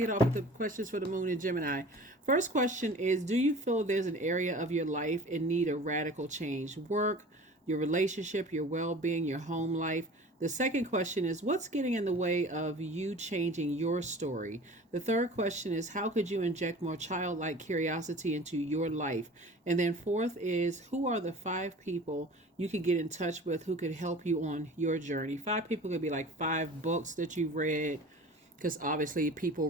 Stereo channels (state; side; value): normal; both; correlation 0.41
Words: it off with the questions for the moon in Gemini. First question is, do you feel there's an area of your life in need of radical change? Work, your relationship, your well-being, your home life. The second question is, what's getting in the way of you changing your story? The third question is, how could you inject more childlike curiosity into your life? And then fourth is, who are the 5 people you could get in touch with who could help you on your journey? 5 people could be like 5 books that you've read, because obviously people